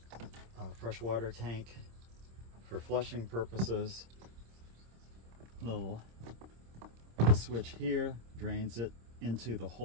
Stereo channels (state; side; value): late; left; 26 ms